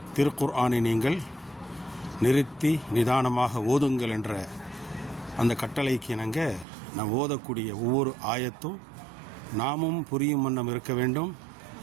திருக்குர்ஆனை நீங்கள் நிறுத்தி நிதானமாக ஓதுங்கள் என்ற அந்த கட்டளைக்கு இணங்க நாம் ஓதக்கூடிய ஒவ்வொரு ஆயத்தும் நாமும் புரியும் வண்ணம் இருக்க வேண்டும்,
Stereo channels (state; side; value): drops out; left; at 6.7 s